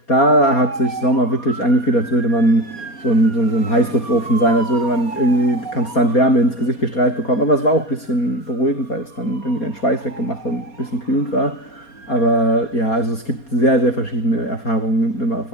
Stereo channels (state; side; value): late; right; 4.2 ms